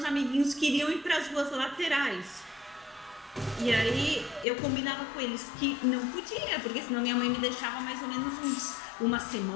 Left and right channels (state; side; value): drops out; right; at 4.5 s